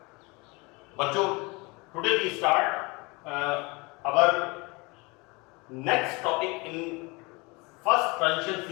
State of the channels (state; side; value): quieter; right; 26.8 dB